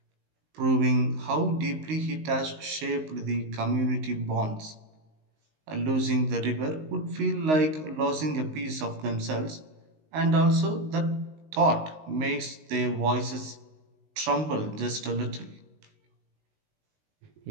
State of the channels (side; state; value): left; late; 19 ms